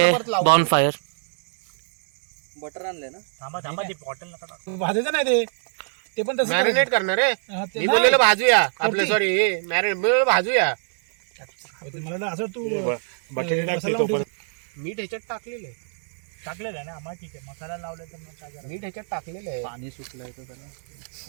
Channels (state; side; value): silent; left; 62 dB below the other